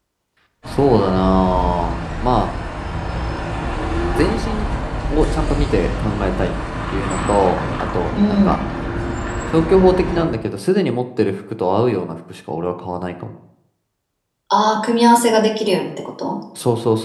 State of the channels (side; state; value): both; identical; correlation 1.00